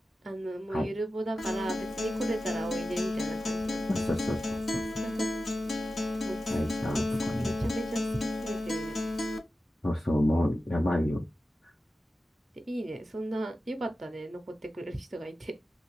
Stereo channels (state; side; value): normal; both; correlation 0.93